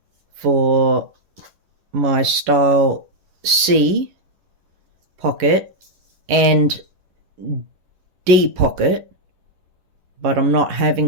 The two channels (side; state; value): left; late; 11 ms